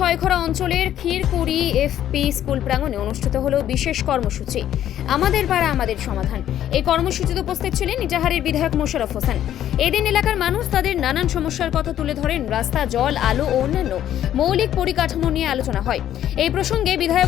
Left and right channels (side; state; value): right; quieter; 11.4 dB